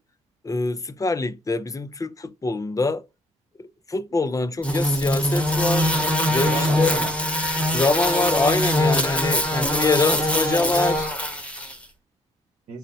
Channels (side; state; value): both; normal; correlation 0.62